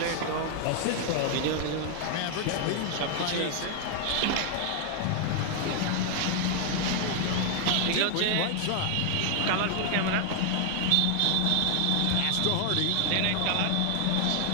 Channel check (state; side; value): different; both; correlation 0.00